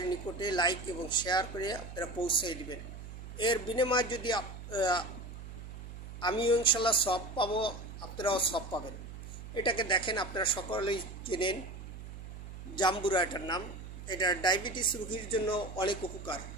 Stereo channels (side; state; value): right; noise; hum, 11 dB below the sound